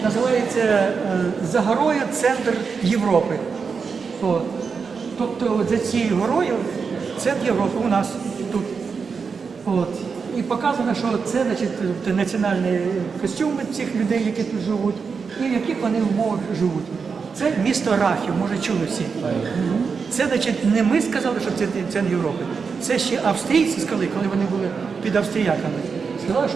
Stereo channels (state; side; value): quieter; left; 5.4 dB